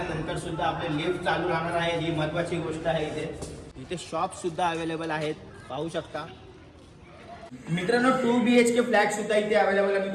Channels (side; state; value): both; identical; correlation 1.00